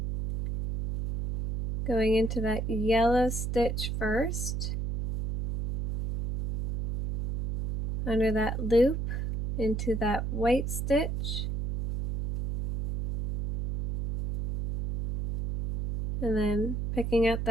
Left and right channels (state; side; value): noise; right; hum, 3 dB below the sound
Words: Going into that yellow stitch first. Under that loop, into that white stitch. And then picking up